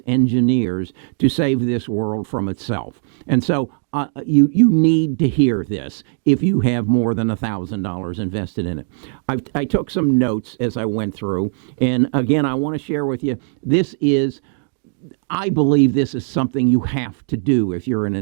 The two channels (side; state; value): left; silent; 59 dB below the other